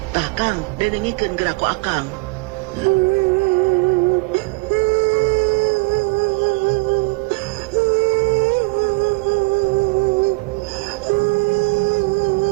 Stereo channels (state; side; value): quieter; left; 26.3 dB